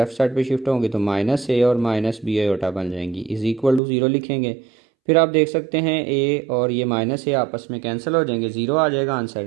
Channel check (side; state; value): left; drops out; at 3.8 s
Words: साइड पे शिफ्ट होंगी तो माइनस a और माइनस बी आयोटा बन जाएंगी, इज़ इक्वल टू 0 लिखेंगे। फिर आप देख सकते हैं a और ये माइनस a आपस में कैंसिल हो जाएंगे, 0 आ जाएगा आंसर।